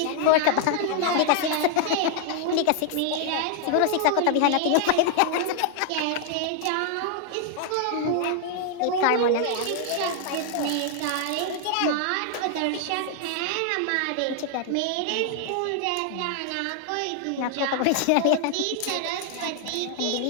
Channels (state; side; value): different; both; correlation 0.00